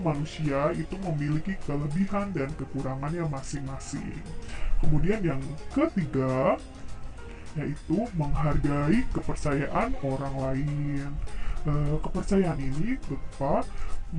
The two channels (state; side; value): identical; both; correlation 1.00